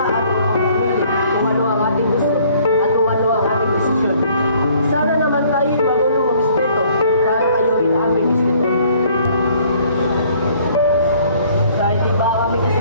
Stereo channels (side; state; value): both; inverted; correlation -0.59